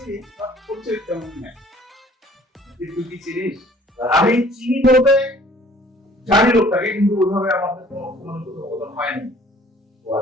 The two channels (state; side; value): normal; both; correlation 0.54